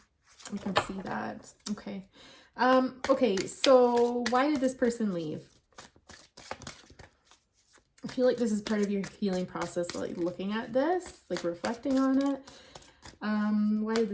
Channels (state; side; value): identical; both; correlation 1.00